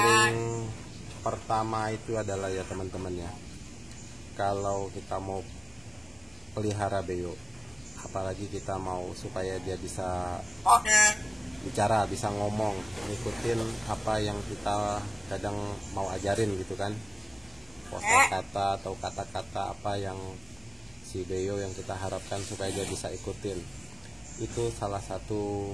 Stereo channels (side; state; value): both; normal; correlation 0.97